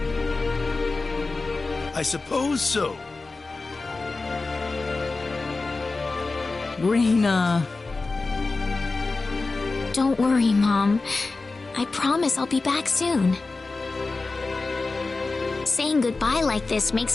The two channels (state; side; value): quieter; right; 3.7 dB